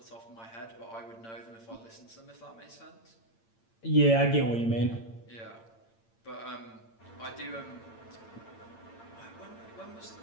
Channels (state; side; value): late; right; 8.8 ms